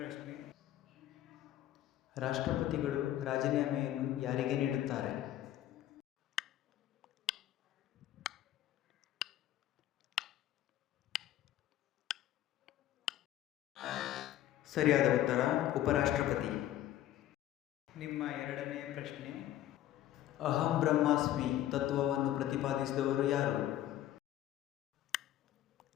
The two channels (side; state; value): right; quieter; 13.0 dB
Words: ರಾಷ್ಟ್ರಪತಿಗಳು ರಾಜೀನಾಮೆಯನ್ನು ಯಾರಿಗೆ ನೀಡುತ್ತಾರೆ? ಸರಿಯಾದ ಉತ್ತರ ಉಪರಾಷ್ಟ್ರಪತಿ. ನಿಮ್ಮ ಎರಡನೆಯ ಪ್ರಶ್ನೆ, ಅಹಂ ಬ್ರಹ್ಮಾಸ್ಮಿ ತತ್ವವನ್ನು ಪ್ರತಿಪಾದಿಸಿದವರು ಯಾರು?